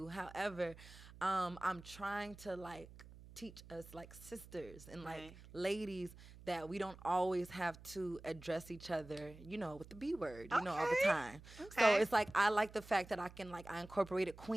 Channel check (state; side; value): noise; right; hum, 18 dB below the sound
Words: However, I'm trying to like teach us like sisters and like ladies that we don't always have to address each other, you know, with the B word, you know, all the time. So it's like I like the fact that I incorporated